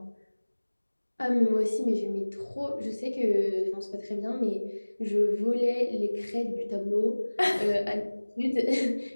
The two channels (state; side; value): inverted; both; correlation -1.00